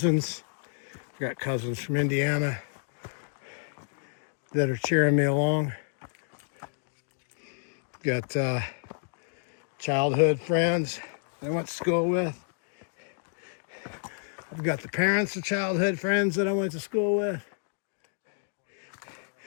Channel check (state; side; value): silent; right; digital silence